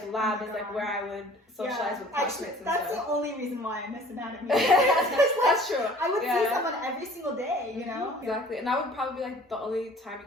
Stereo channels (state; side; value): normal; both; correlation 0.50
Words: lab is, like, where I would socialize with classmates and that's stuff. the only reason why I miss anatomy. That's true. I would see someone every single day, you know? Exactly. And that would probably be, like, the only time you